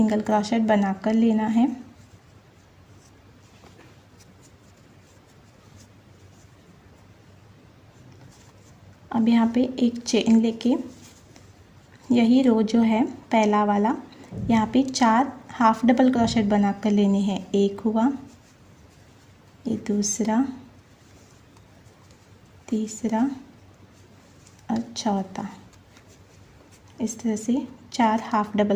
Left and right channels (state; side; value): identical; both; correlation 1.00